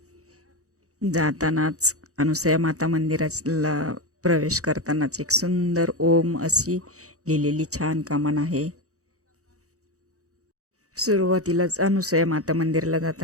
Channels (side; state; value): left; late; 0.65 ms